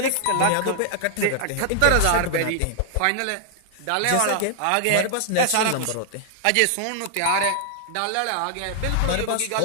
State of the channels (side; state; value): both; different; correlation 0.00